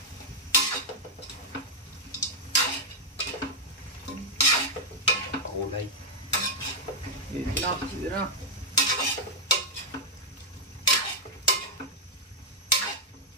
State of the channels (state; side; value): normal; both; correlation -0.04